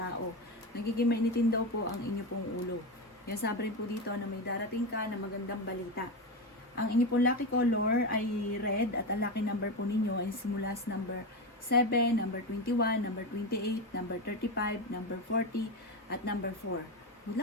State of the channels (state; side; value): normal; both; correlation 0.16